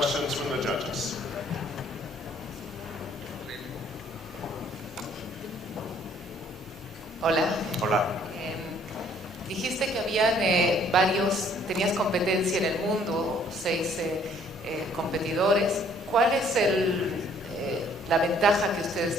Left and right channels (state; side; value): normal; both; correlation 0.61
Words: from the judges. Hola. Hola. Dijiste que habían tenías competencia en el mundo, 6 competidores. ¿Cuál es la ventaja que